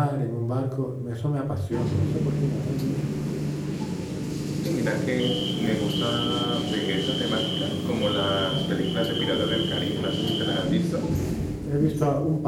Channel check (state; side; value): identical; both; correlation 1.00